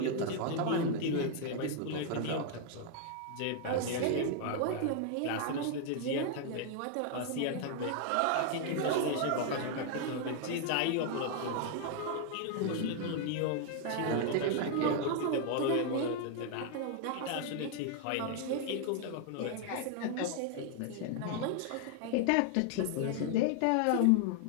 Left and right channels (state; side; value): different; both; correlation 0.00